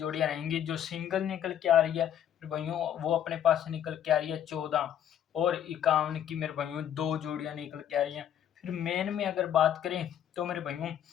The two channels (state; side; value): quieter; right; 10.0 dB